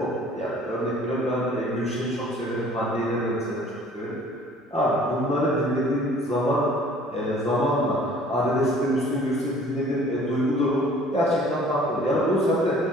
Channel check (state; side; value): normal; both; correlation 0.53